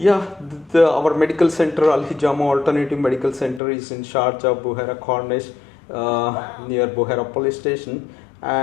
our medical center, Al Hijama Alternative Medical Center, is in Sharjah, Buhaira Cornish, near Buhaira Police Station,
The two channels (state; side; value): drops out; right; at 3.6 s